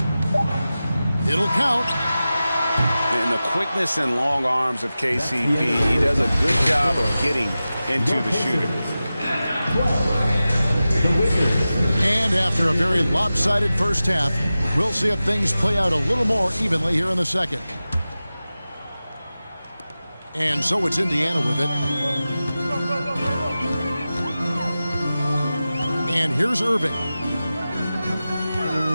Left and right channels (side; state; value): both; inverted; correlation -0.95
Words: It'll count. And the quickness and long arms of KCP, he does a good job of getting into the shooter. And after a very lopsided first half, we'll see if things play out a little more evenly here in the second. And so it's Indiana with it. And here's Irving.